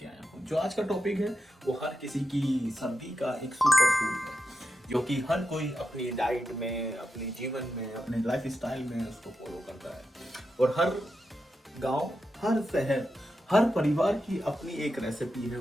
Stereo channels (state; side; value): normal; both; correlation 0.89